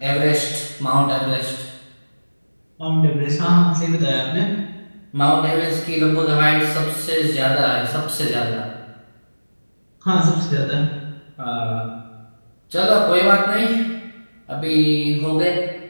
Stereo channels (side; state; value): both; inverted; correlation -1.00